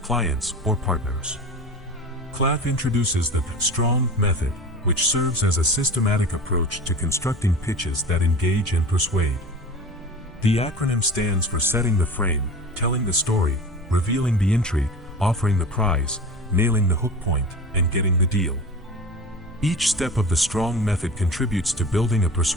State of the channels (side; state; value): both; normal; correlation 0.34